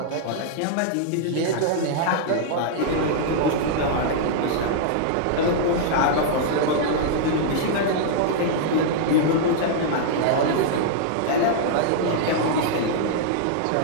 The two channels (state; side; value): different; both; correlation -0.01